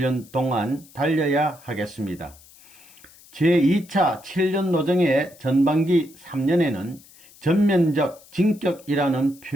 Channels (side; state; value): left; noise; hiss, 24 dB below the sound